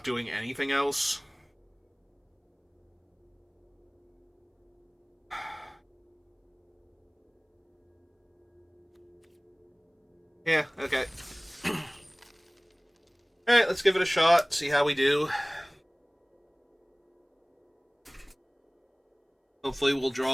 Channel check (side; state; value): both; identical; correlation 1.00